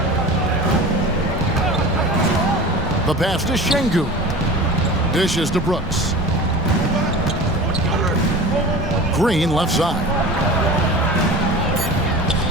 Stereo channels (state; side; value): normal; both; correlation 0.35